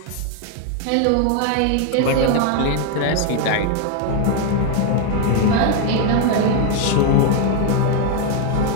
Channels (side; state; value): both; different; correlation 0.01